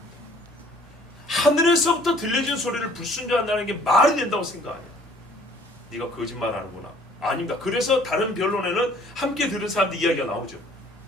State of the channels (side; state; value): both; normal; correlation 0.56